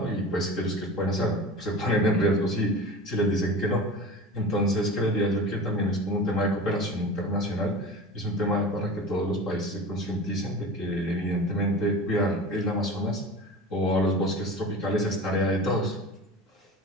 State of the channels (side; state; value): both; normal; correlation 0.34